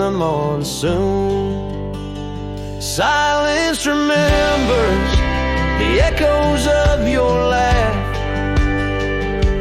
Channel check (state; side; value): identical; both; correlation 1.00